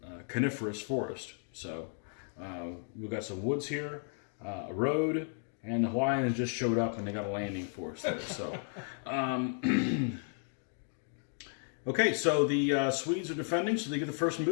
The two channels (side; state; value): right; silent; 55 dB below the other